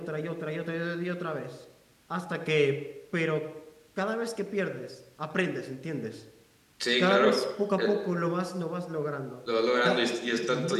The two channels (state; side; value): identical; both; correlation 1.00